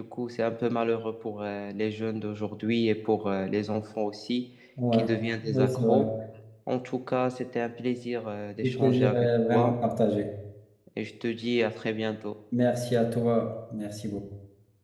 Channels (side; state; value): both; identical; correlation 1.00